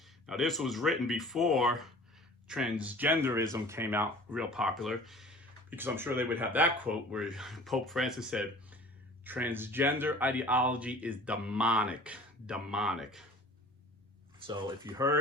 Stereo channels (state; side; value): normal; both; correlation 0.45